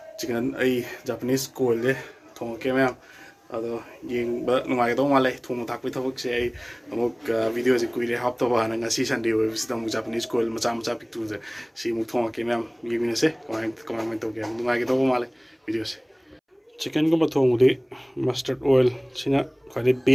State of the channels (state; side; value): identical; both; correlation 1.00